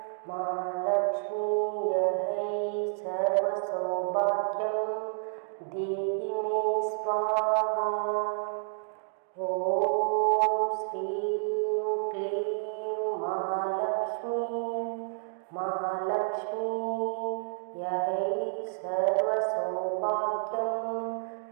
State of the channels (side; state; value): left; silent; digital silence